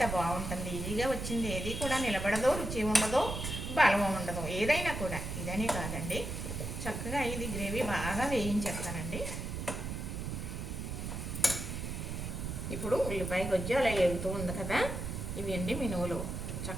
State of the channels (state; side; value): noise; right; rumble, 5 dB below the sound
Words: బాగుంటుంది. ఈజీగా వచ్చింది ఏది కూడా నిలబడదో, రుచి ఉండదో, బలం ఉండదు. ఏదైనా కూడా ఇదనే కాదండి. చక్కగా ఇది గ్రేవీ బాగా వేయించేస్తానండి. ఇప్పుడు ఉల్లిపాయ గొజ్జు అలా ఎగుతూ ఉంది కదా, ఇవి అండి మినువులు.